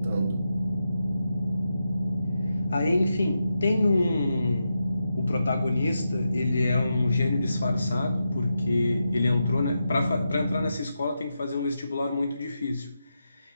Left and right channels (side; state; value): both; inverted; correlation -0.87